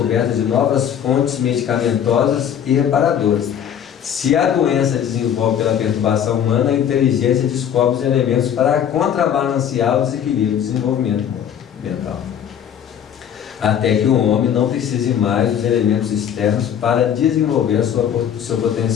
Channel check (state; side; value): quieter; right; 9.0 dB